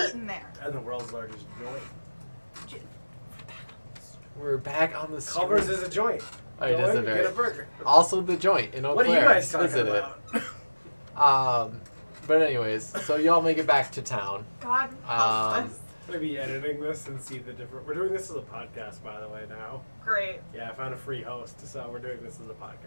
eaten there. And the world's largest joint. We're back on the street. Culver's is a joint. Oh, it Go is in a and very. get a burger. Also the joint in Eau What are you Claire. guys talking Visit about? it. But anyways, so y'all make it back to town. God help us. I'm gonna be editing this and see the different. We're doing this as a podcast, by the way. Now, Great. yeah, I found a free host, so we're doing this as a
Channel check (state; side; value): inverted; both; correlation -1.00